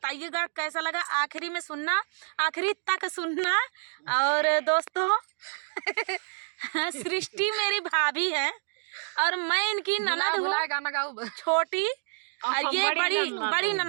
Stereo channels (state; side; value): silent; left; 59 dB below the other